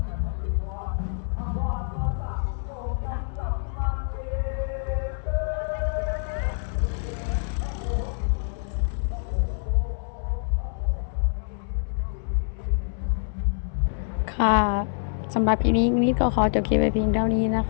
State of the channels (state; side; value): silent; right; digital silence